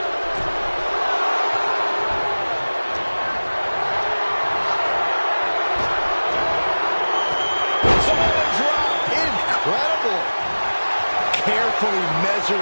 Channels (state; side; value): inverted; both; correlation -1.00